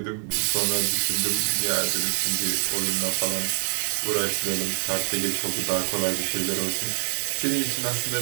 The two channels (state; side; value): silent; left; digital silence